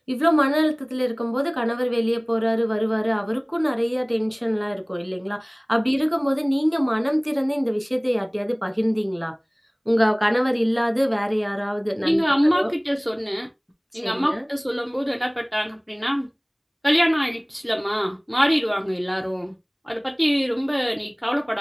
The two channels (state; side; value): identical; both; correlation 1.00